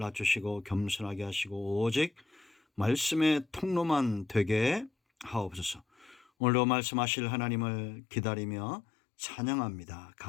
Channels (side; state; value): right; drops out; at 6.2 s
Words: 겸손하게 하시고 오직 말씀의 통로만 되게 하옵소서. 오늘도 말씀하실 하나님을 기다리며 찬양합니다.